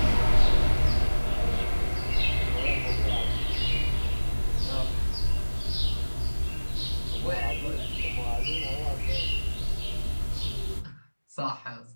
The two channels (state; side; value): inverted; both; correlation -1.00